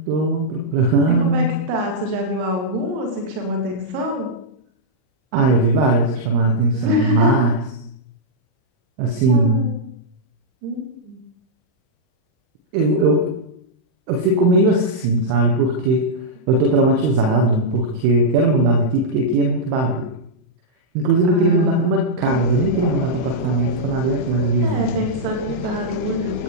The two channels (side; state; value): left; late; 39 ms